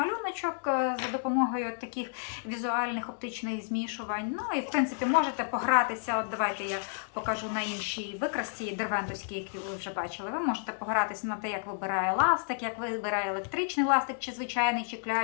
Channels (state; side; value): silent; right; digital silence